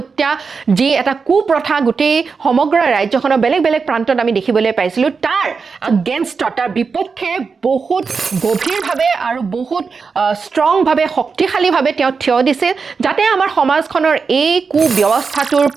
যি এটা কুপ্ৰথা গোটেই সমগ্ৰ ৰাজ্যখনৰ বেলেগ বেলেগ প্ৰান্তত আমি দেখিবলৈ পাইছিলোঁ তাৰ এগেইনষ্টত তাৰ বিপক্ষে বহুত গভীৰভাৱে আৰু বহুত ষ্ট্ৰংভাৱে শক্তিশালীভাৱে তেওঁ থিয় দিছিল যাতে আমাৰ সমাজখনৰ এই কুব্যৱস্থাটোৰ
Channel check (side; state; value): left; quieter; 5.1 dB